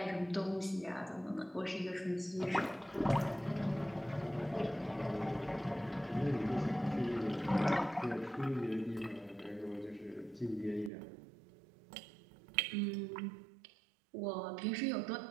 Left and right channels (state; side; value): drops out; left; at 10.9 s